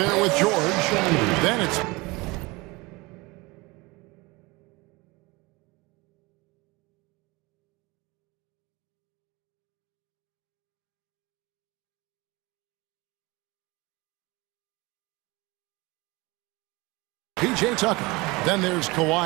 with George. Then it's P.J. Tucker. Then there's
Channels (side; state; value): left; quieter; 23.9 dB